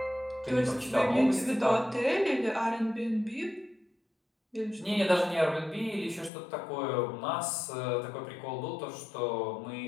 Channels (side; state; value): right; drops out; at 6.3 s